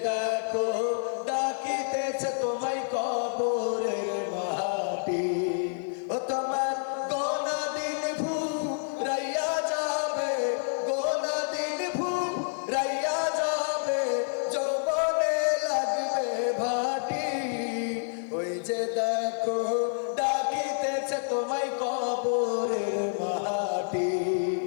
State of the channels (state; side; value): silent; right; 56 dB below the other